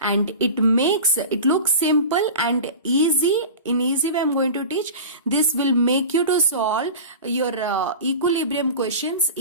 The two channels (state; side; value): inverted; both; correlation -0.32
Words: it looks simple and easy. In easy way I'm going to teach. This will make you to solve your equilibrium questions